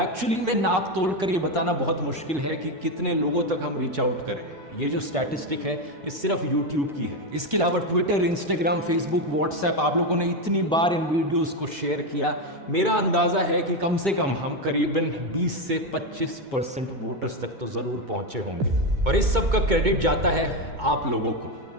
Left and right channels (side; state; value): left; late; 2.2 ms